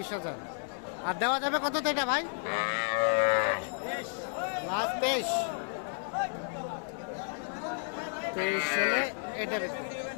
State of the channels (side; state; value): right; silent; 56 dB below the other